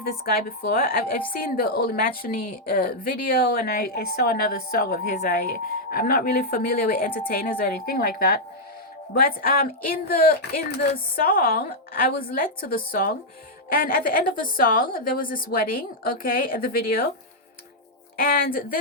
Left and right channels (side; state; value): both; normal; correlation -0.03